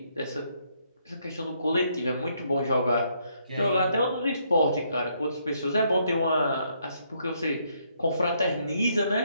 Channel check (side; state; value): both; inverted; correlation -0.72